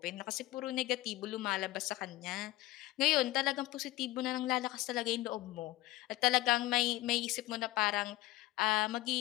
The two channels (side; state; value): right; quieter; 17.7 dB